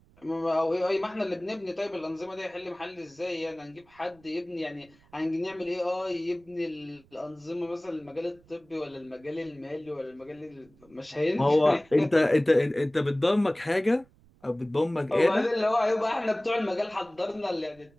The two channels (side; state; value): right; noise; rumble, 29 dB below the sound